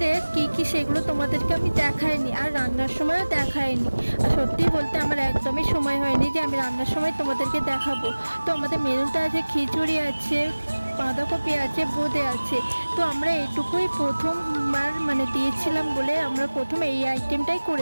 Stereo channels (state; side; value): inverted; both; correlation -1.00